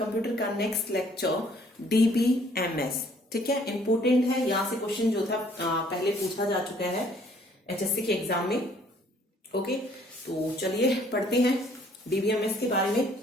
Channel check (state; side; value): normal; both; correlation 0.61